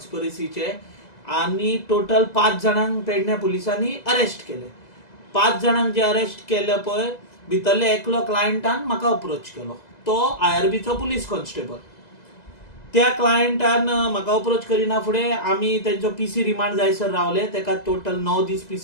आणि total 5 जाणांक पेडणे पुलिसांनी अरेस्ट केले. 5 जाणांक जे अरेस्ट केले पळय भितरले एकलो क्लायंटान म्हाका अप्रोच केलो. तो IRBचो पुलीस कॉन्स्टेबल. त्या क्लायंटान म्हाका अप्रोच करिना फुडें आमी तेंचो PC रिमांड जायसर रावले. तेका टोटल 9 दीस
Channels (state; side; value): late; right; 2.0 ms